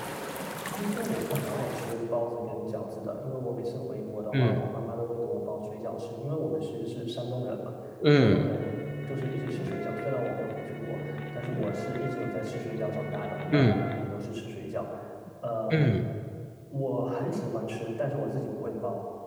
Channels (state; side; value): identical; both; correlation 1.00